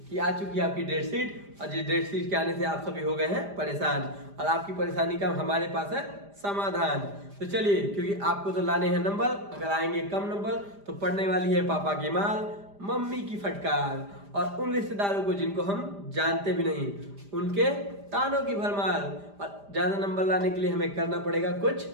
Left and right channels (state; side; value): late; left; 5.0 ms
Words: कि आ चुकी है आपकी डेट शीट, और जिस डेट शीट के आने से आप सभी हो गए हैं परेशान, और आपकी परेशानी का हमारे पास है समाधान। तो चलिए, क्योंकि आपको तो लाने हैं नंबर, अगर आएंगे कम नंबर तो पड़ने वाली है पापा की माल, मम्मी की फटकार, और उन रिश्तेदारों को जिनको हम जानते भी नहीं उनके तानों की भरमार। और ज्यादा नंबर लाने के लिए हमें करना पड़ेगा कुछ